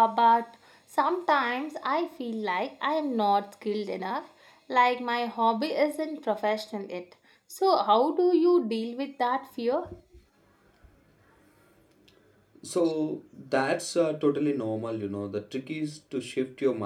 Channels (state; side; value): identical; both; correlation 1.00